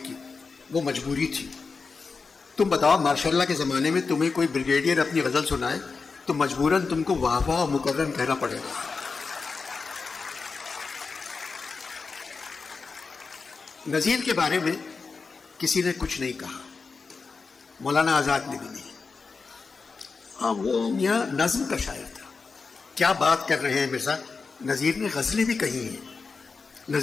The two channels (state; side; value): quieter; right; 4.6 dB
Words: کی، وہ مجبوری تھی۔ تم بتاؤ ماشاء اللہ کے زمانے میں تمہیں کوئی بریگیڈیئر اپنی غزل سنائے تو مجبوراً تم کو واہ واہ مکرم کہنا پڑے گا۔ نذیر کے بارے میں کسی نے کچھ نہیں کہا، مولانا آزاد نے بھی نہیں۔ ہاں وہ میاں نظم کا شاعر تھا۔ کیا بات کر رہے ہیں مرزا، نذیر نے غزلیں بھی کہی ہیں۔